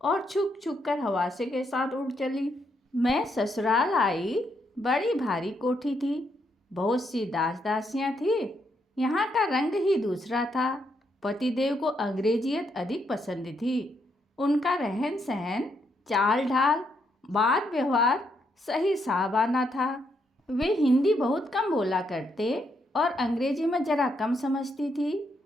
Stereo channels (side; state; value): both; normal; correlation 0.77